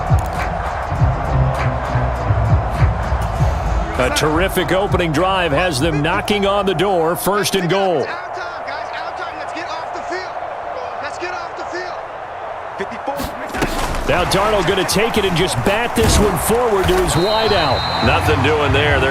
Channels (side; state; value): both; identical; correlation 1.00